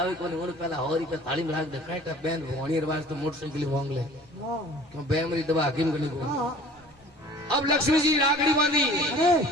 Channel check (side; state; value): both; normal; correlation 0.48